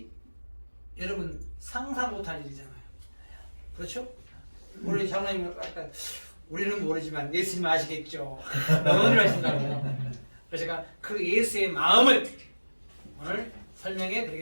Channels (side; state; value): both; inverted; correlation -1.00